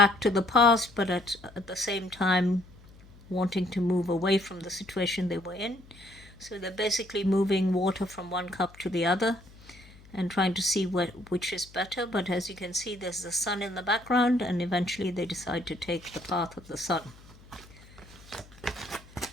to the past, but at the same time wanting to move away from the situation they were in. So they're basically moving water from one cup to the other and trying to see which is better. But as you can see, there's the Sun in the background, and eventually they decide to take the path of the Sun.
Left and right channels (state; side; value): noise; left; hum, 23 dB below the sound